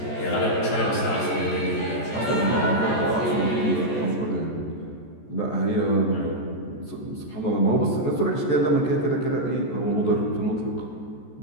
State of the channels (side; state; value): right; late; 14 ms